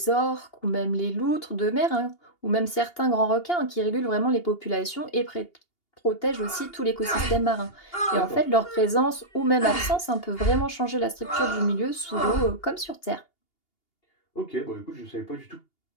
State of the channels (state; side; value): late; right; 2.8 ms